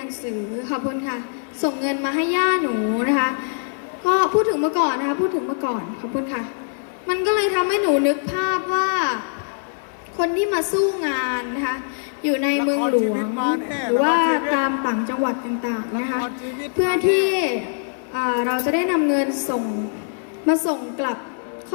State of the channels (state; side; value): silent; right; digital silence